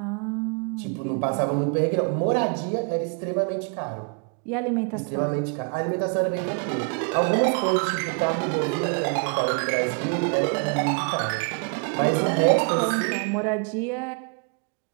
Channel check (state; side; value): quieter; left; 36.8 dB